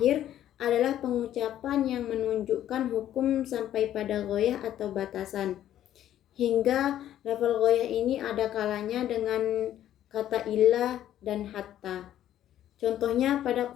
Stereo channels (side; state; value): right; quieter; 11.8 dB